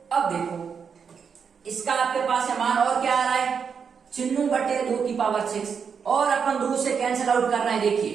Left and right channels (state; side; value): quieter; left; 6.5 dB